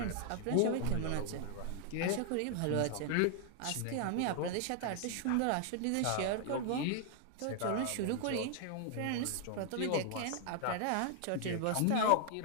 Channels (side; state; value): both; different; correlation 0.00